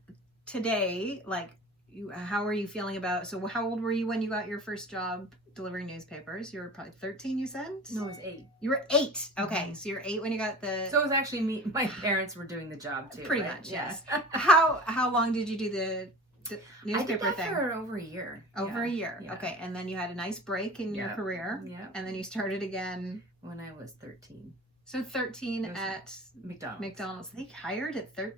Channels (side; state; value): both; normal; correlation 0.38